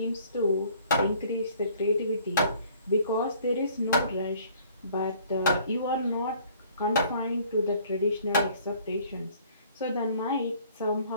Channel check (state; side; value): inverted; both; correlation -0.56